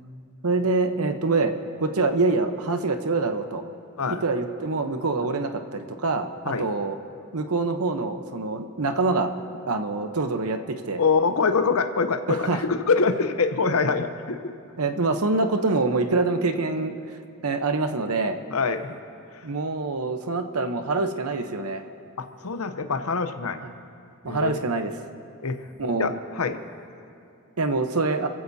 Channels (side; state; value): both; normal; correlation -0.15